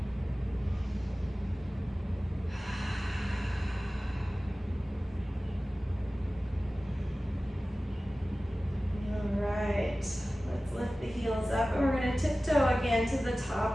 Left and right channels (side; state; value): both; normal; correlation 0.97